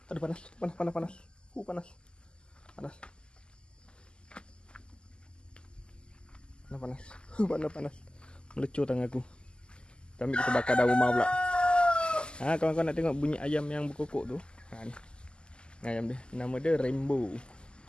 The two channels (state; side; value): late; right; 0.049 ms